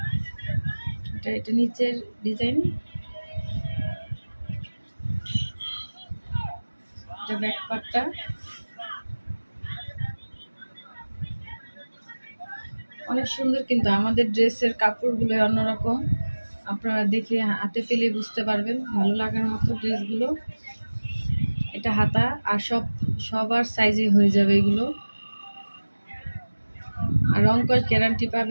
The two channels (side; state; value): both; inverted; correlation -1.00